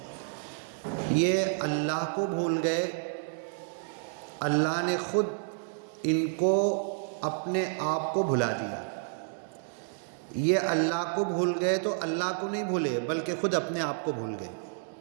یہ اللہ کو بھول گئے، اللہ نے خود ان کو اپنے آپ کو بھلا دیا۔ یہ اللہ کو بھول گئے تو اللہ کو نہیں بھولے بلکہ خود اپنے آپ کو بھول گئے۔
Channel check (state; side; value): silent; left; digital silence